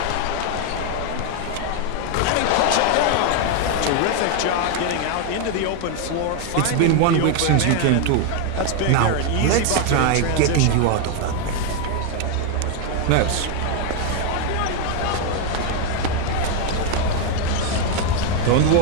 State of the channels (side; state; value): both; different; correlation 0.01